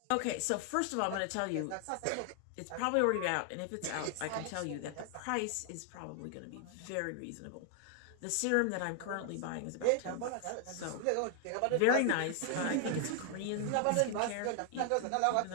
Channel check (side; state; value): both; different; correlation 0.00